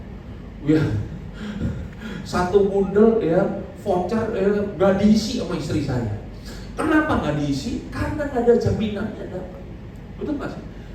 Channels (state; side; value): identical; both; correlation 1.00